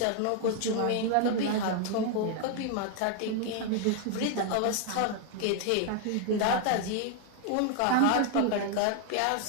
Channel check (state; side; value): different; both; correlation 0.00